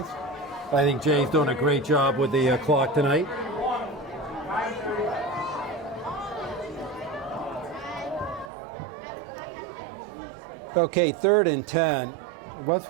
I think Jay's doing a great job with the clock tonight. Okay, 3rd and 10.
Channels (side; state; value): left; drops out; at 8.5 s